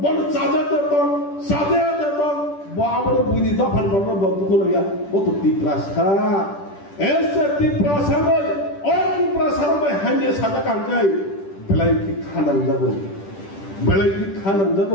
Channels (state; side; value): late; right; 10 ms